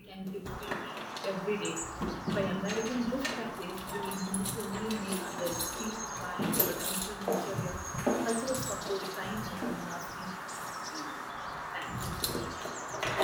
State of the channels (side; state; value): both; identical; correlation 1.00